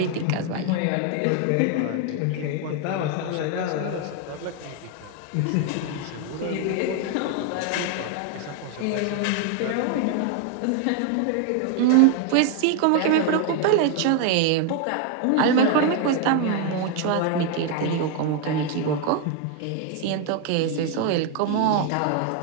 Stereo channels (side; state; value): both; different; correlation 0.01